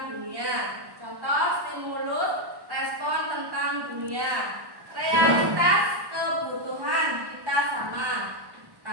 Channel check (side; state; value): left; late; 1.1 ms